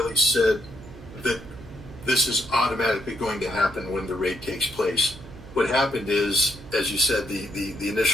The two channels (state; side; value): noise; right; hum, 17 dB below the sound